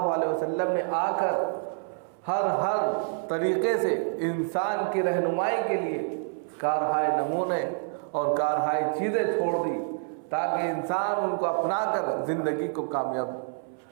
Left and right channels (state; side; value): silent; left; 60 dB below the other